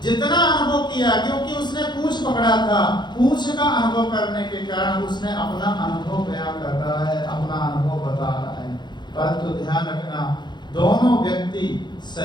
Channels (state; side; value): late; right; 0.21 ms